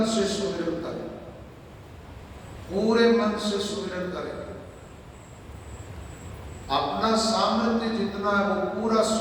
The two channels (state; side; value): identical; both; correlation 1.00